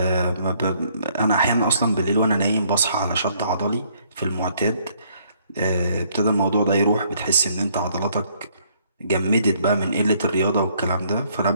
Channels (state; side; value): inverted; both; correlation -0.66